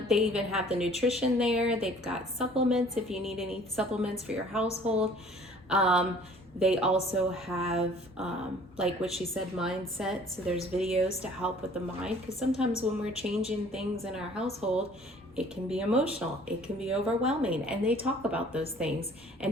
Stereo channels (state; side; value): normal; both; correlation 0.53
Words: they even have the nutrition there. They've got supplements if you need any supplements for your household. They also have, like what she said, mindset. So there's videos to help with the mind, because sometimes when we're changing things in our household, it can be emotional, it can be overwhelming, and they talk about those things